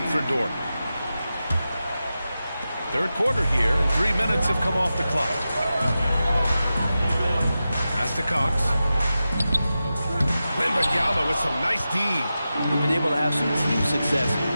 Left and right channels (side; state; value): both; inverted; correlation -0.92